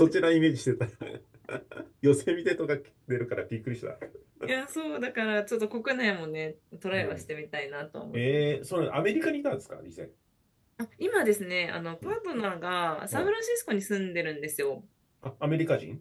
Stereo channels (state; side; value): identical; both; correlation 1.00